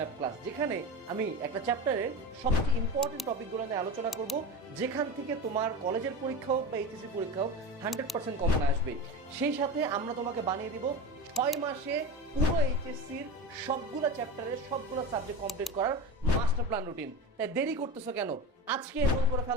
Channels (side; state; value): both; normal; correlation 0.26